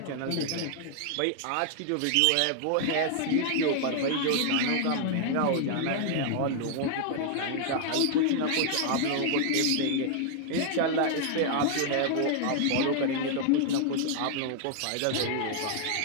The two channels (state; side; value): different; both; correlation 0.00